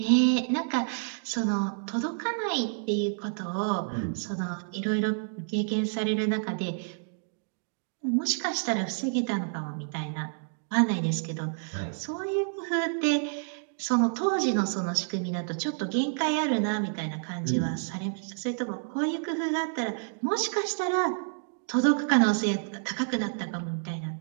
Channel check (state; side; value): silent; left; digital silence